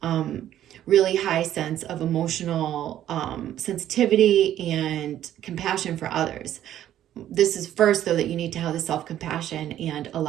really high sense of emotional sensitivity and compassion for others. This is first, though, that you need to have the self-compassion and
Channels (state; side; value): quieter; left; 11.8 dB